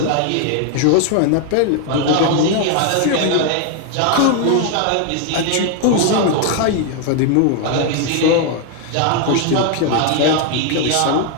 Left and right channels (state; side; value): different; both; correlation 0.01